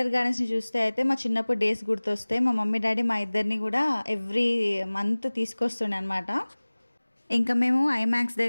గార్డెన్స్ని చూస్తే అయితే మా చిన్నప్పుడు డేస్ గుర్తొస్తాయి. మా మమ్మీ డాడీ మా ఇద్దరిని కూడా ఎవ్రీ మంత్ తీసుకొస్తుండే అనమాట. ఇంకా మేము ఐమాక్స్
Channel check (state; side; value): inverted; both; correlation -1.00